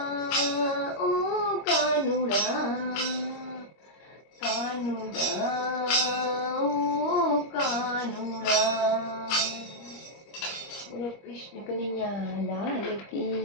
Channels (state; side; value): late; right; 25 ms